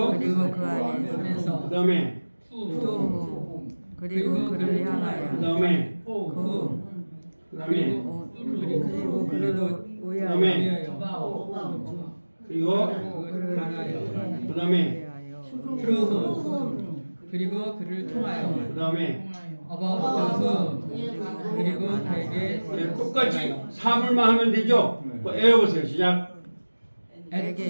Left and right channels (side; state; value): both; inverted; correlation -1.00